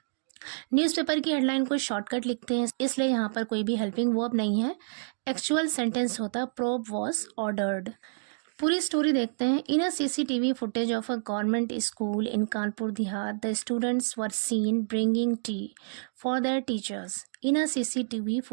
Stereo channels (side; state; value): left; silent; digital silence